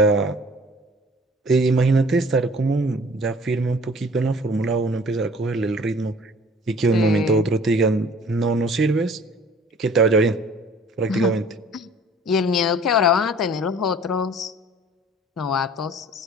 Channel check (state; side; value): normal; both; correlation 0.50